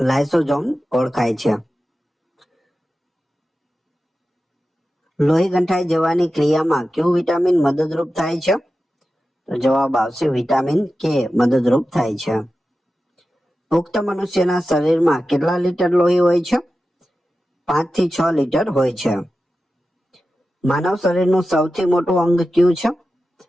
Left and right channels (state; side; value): normal; both; correlation 0.93